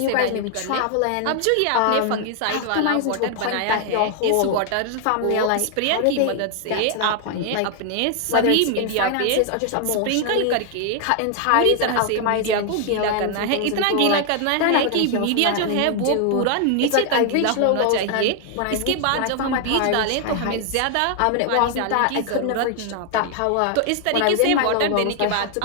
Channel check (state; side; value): different; both; correlation 0.00